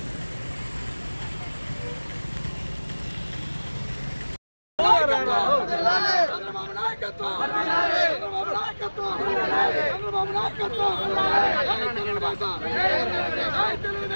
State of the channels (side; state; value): both; inverted; correlation -1.00